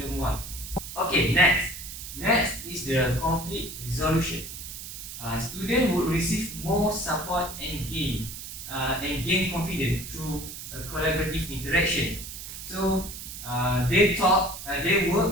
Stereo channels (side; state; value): right; noise; hiss, 10 dB below the sound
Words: one. Okay, next Next is the conflict resolution. Students would receive more support and gain confidence through a collaborative interaction. So they